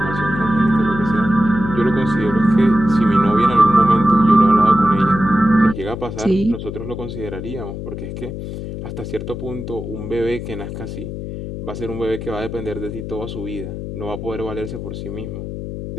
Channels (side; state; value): left; noise; hum, 8 dB below the sound